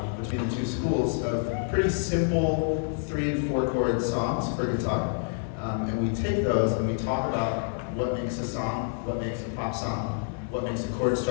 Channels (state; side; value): silent; right; 58 dB below the other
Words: between the two schools of pretty simple 3 and 4 chord songs for guitar. And we take those and we talk about what makes a song, what makes a pop song, what makes a chord